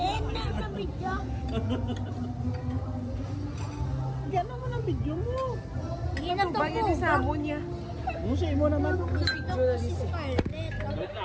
na sa video. Gano'n mo ng video mo. Hindi na Ano to ba yan yung samon niya? Musay mo naman. Ito ko si Scarlett. Wait na,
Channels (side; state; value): both; identical; correlation 1.00